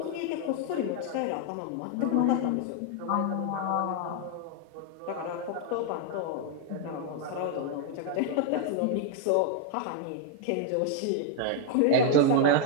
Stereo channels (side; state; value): both; different; correlation 0.01